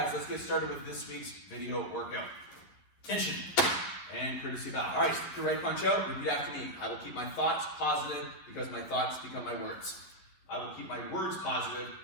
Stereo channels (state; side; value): late; right; 11 ms